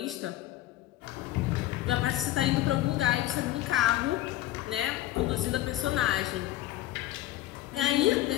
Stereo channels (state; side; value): quieter; right; 14.9 dB